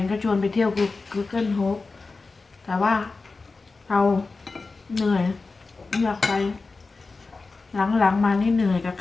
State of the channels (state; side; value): quieter; right; 3.9 dB